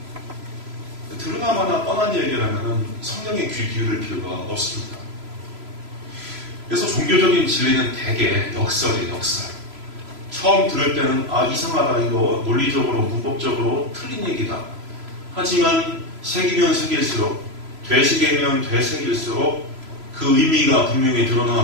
드러나마나 뻔한 얘기라면 성경에 귀 기울일 필요가 없습니다. 그래서 종교적인 진리는 대개 역설이에요. 역설. 처음 들을 때는 이상하다, 이거 논리적으로 문법적으로 틀린 얘기다. 하지만 새기면 새길수록, 되새기면 되새길수록 그 의미가 분명히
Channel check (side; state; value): left; late; 3.0 ms